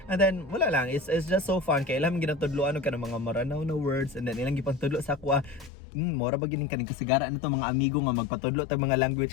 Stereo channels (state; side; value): drops out; right; at 5.7 s